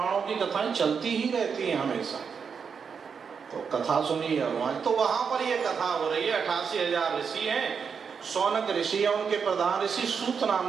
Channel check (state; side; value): quieter; left; 6.2 dB